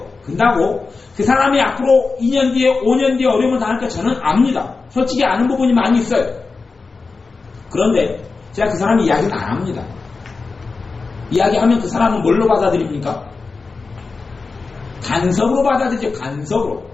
근다고 그 사람이 앞으로 2년 뒤에 5년 뒤에 어려움을 당할까 저는 압니다. 솔직히 아는 부분이 많이 있어요. 그런데 제가 그 사람 이야기는 안 합니다. 이야기하면 그 사람은 뭘로 받아들입니까? 간섭으로 받아들이죠. 간섭으로.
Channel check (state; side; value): quieter; right; 4.2 dB